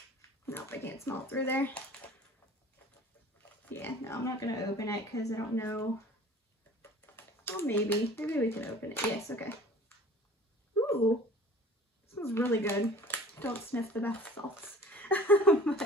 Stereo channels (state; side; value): normal; both; correlation 0.45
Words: Nope, I can't smell it through there. Yeah, no, I'm not going to open it because I don't know. Well, maybe we can open it. Yes, okay. Ooh, this smells really good. Don't sniff the bath salts. But